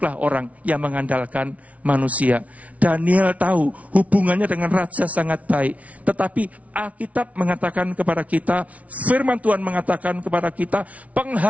orang yang mengandalkan manusia. Daniel tahu hubungannya dengan raja sangat baik. Tetapi Alkitab mengatakan kepada kita, firman Tuhan mengatakan kepada kita,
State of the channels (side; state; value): left; late; 0.067 ms